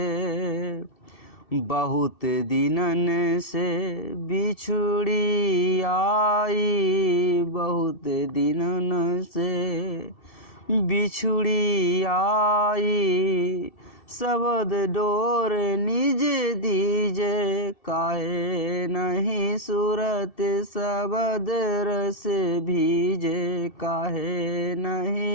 बहुत दिनन से बिछुड़ी आई, बहुत दिनन से बिछुड़ी आई। सबद डोर निज दीजे, काहे नहीं सूरत सबद रस भीजे, काहे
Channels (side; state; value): right; late; 2.7 ms